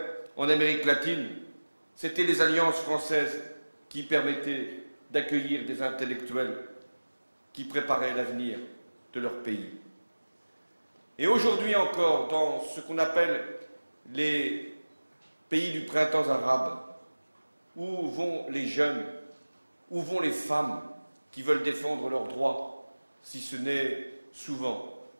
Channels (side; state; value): both; inverted; correlation -1.00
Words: en Amérique latine, c'était les alliances françaises qui permettaient d'accueillir des intellectuels qui préparaient l'avenir de leur pays. Et aujourd'hui encore, dans ce qu'on appelle les pays du printemps arabe, où vont les jeunes, où vont les femmes qui veulent défendre leurs droits, si ce n'est souvent